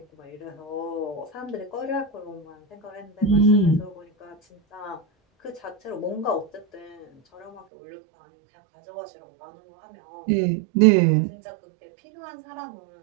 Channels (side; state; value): left; drops out; at 7.7 s